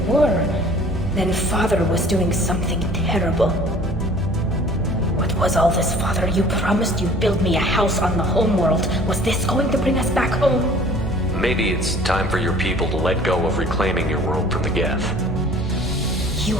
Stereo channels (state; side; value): normal; both; correlation 0.50